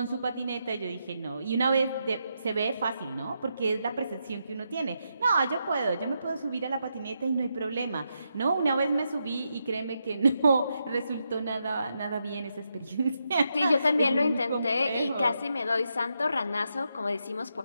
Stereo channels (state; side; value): inverted; both; correlation -0.83